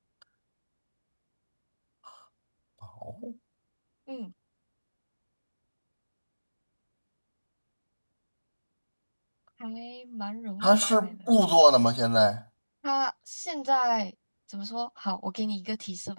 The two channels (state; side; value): inverted; both; correlation -1.00